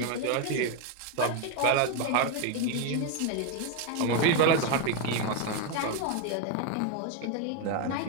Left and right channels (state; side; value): different; both; correlation 0.01